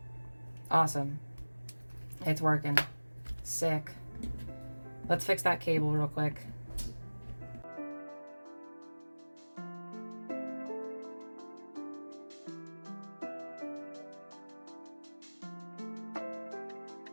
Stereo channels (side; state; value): both; inverted; correlation -1.00